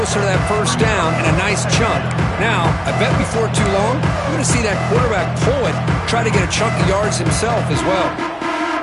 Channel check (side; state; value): both; identical; correlation 1.00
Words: to that first down and a nice chunk. Now, I bet before too long, we're going to see that quarterback pull it, try to get a chunk of yards himself as well.